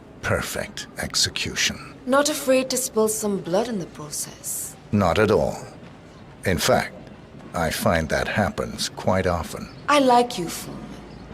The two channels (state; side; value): identical; both; correlation 1.00